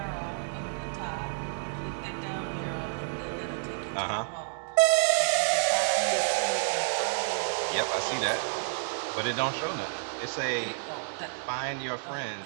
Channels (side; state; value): left; silent; digital silence